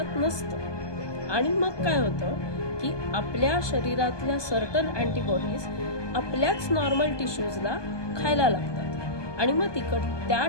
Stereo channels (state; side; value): late; right; 1.2 ms